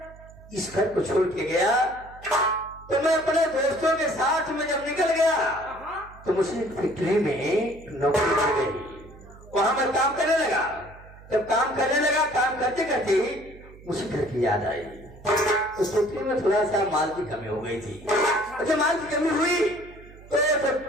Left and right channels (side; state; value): right; noise; hum, 21 dB below the sound